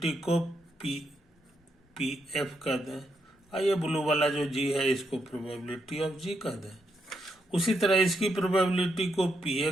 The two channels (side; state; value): both; normal; correlation 0.80